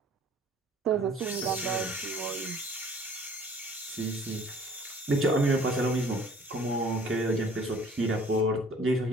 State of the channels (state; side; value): normal; both; correlation 0.52